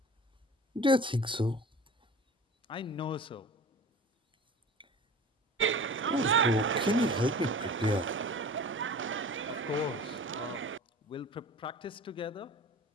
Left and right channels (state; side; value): normal; both; correlation 0.39